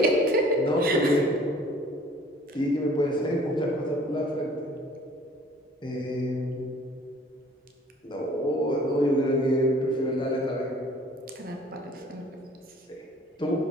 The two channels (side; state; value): both; normal; correlation 0.53